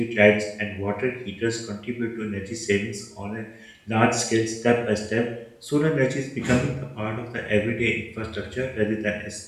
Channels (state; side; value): identical; both; correlation 1.00